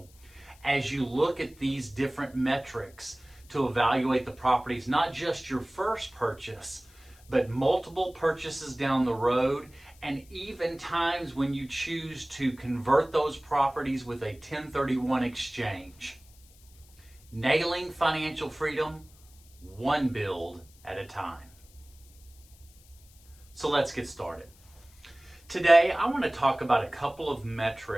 as you look at these different metrics to evaluate the properties, not just your first purchase, but multiple purchases down the road, and even times when you choose to convert those properties with a 1031 exchange. Nailing financial freedom, one build at a time. So let's get started. Today, I want to talk about a couple of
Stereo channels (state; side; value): noise; left; hiss, 27 dB below the sound